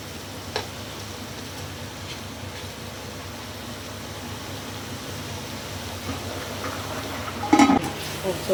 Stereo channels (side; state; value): both; identical; correlation 1.00